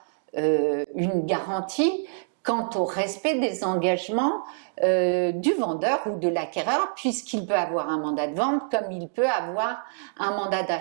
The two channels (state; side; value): silent; left; digital silence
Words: une garantie quant au respect des engagements du vendeur ou de l'acquéreur, puisqu'il peut avoir un mandat de vente comme il peut avoir un mandat